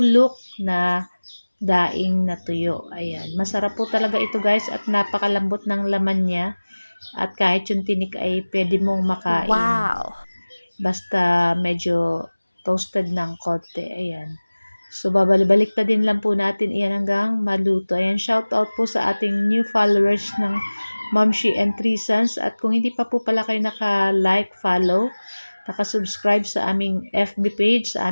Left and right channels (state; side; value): inverted; both; correlation -1.00